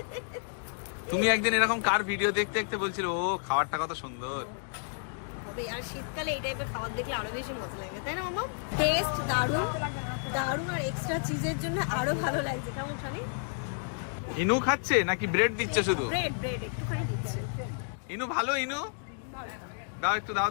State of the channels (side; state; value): right; silent; digital silence